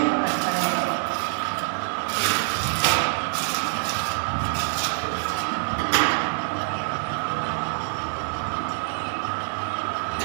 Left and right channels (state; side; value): silent; left; digital silence